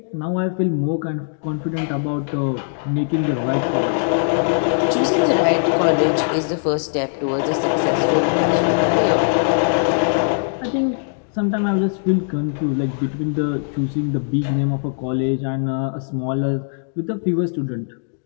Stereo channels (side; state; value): right; silent; digital silence